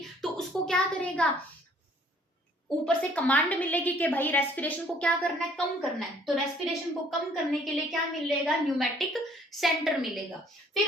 तो उसको क्या करेगा, ऊपर से कमांड मिलेगी कि भाई रेस्पिरेशन को क्या करना है, कम करना है, तो रेस्पिरेशन को कम करने के लिए क्या मिलेगा, न्यूमैटिक सेंटर मिलेगा।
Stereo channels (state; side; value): normal; both; correlation 0.60